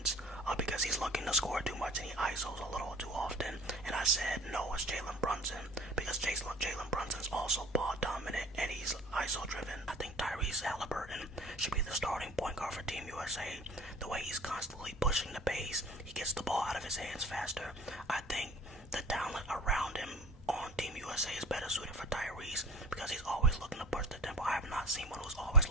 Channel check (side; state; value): both; normal; correlation 0.42